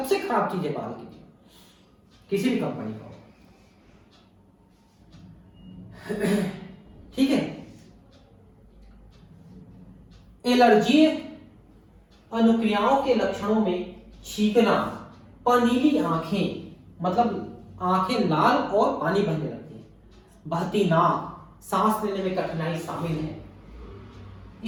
खराब चीज है बाल की, किसी भी कंपनी का, ठीक है। एलर्जी अनुक्रियाओं के लक्षणों में छींकना, पनीली आंखें, मतलब आंखें लाल और पानी बहने लगती है, बहती नाक, सांस लेने में कठिनाई शामिल है।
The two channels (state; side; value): identical; both; correlation 1.00